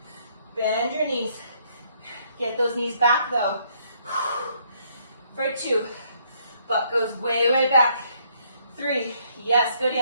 Bend your knees. Get those knees back though. For 2. Butt goes way, way back. 3. Yes, good,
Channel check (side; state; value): both; inverted; correlation -0.68